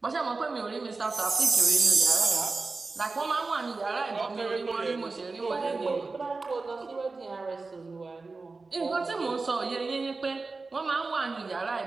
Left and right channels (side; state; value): left; quieter; 3.9 dB